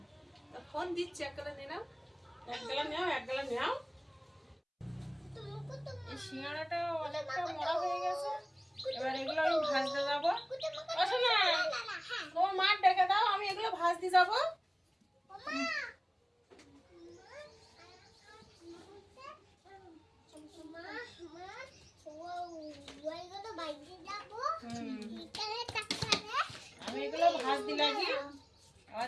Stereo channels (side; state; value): both; identical; correlation 1.00